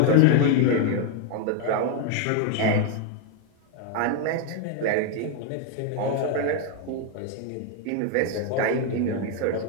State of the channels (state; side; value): different; both; correlation 0.01